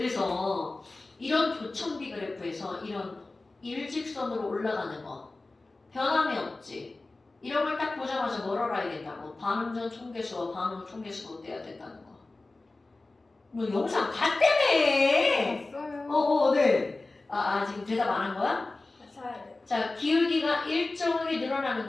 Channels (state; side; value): quieter; right; 3.2 dB